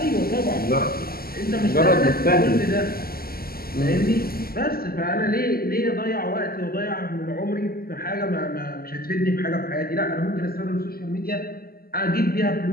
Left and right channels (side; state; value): right; late; 0.44 ms